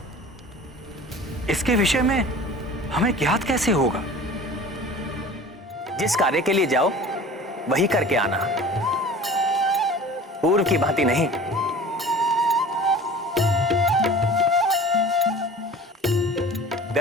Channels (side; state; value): both; normal; correlation 0.42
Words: इसके विषय में हमें ज्ञात कैसे होगा? जिस कार्य के लिए जाओ वही करके आना, पूर्व की भांति नहीं।